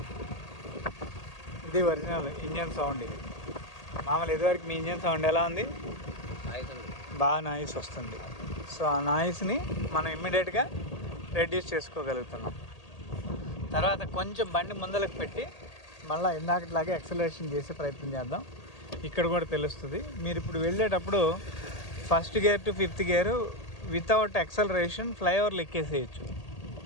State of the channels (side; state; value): right; late; 1.8 ms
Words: ఇది ఒరిజినల్ ఇంజన్ సౌండ్. ఇది మామూలు ఇదివరకు మీ ఇంజన్ సౌండ్ ఎలా ఉంది? బాగా నాయిస్ వస్తుంది. సో ఆ నాయిస్ని మనం ఇమ్మీడియట్గా రెడ్యూస్ చేసుకోగలుగుతున్నాం. తర్వాత కొంచెం బండి ముందలకు పెట్టి మళ్ళీ ఇందాకట్లాగే యాక్సిలరేషన్ చేసే ప్రయత్నం చేద్దాం. ఇక్కడ కూడా తెలుస్తుంది. మీరు ఇప్పుడు వెళ్ళేటప్పుడు first gear to fifth gear without acceleration ఫ్లైఓవర్లు ఎక్కేసేయచ్చు.